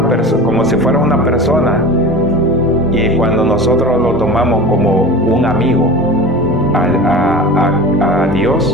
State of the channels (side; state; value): both; normal; correlation 0.34